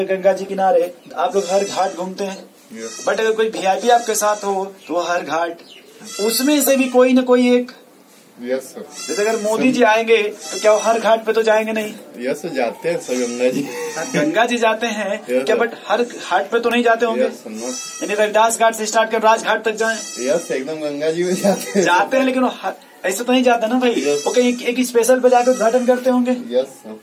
गंगा जी किनारे आप लोग हर घाट घूमते हैं, बट अगर कोई वीआईपी आपके साथ हो तो वो हर घाट उसमें से भी कोई न कोई एक, यस सर। जैसे अगर मोदी जी आएंगे तो क्या वो हर घाट पे तो जाएंगे नहीं? यस जाते हैं सर गंगा जी। गंगा जी जाते हैं क्या, बट हर घाट पे तो नहीं जाते होंगे। यानी रविदास घाट से स्टार्ट कर राजघाट तक जाएं। यस एकदम गंगा जी में जाते हैं लेकिन ऐसे तो नहीं जाते ना भाई। वो कहीं एक स्पेशल पे जाकर उद्घाटन करते होंगे। Yes sir.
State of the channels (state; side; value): identical; both; correlation 1.00